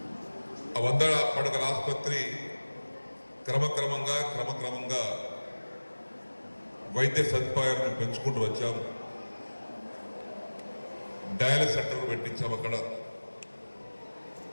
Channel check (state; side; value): inverted; both; correlation -1.00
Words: ఆ 100 పడకల ఆసుపత్రి క్రమక్రమంగా వైద్య సదుపాయాలను పెంచుకుంటూ వచ్చాము. డయాలిసిస్ సెంటర్ పెట్టించాము అక్కడ.